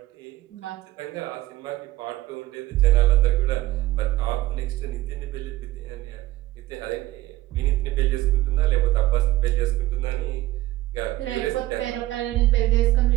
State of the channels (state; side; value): quieter; left; 16.5 dB